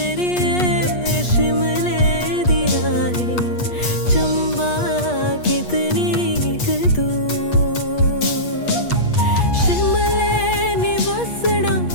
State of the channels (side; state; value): right; late; 8.4 ms